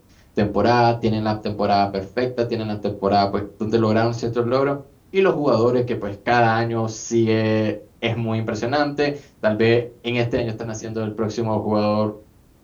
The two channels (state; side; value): identical; both; correlation 1.00